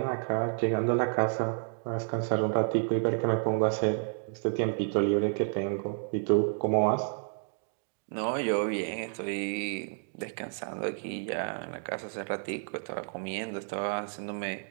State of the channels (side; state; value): left; silent; digital silence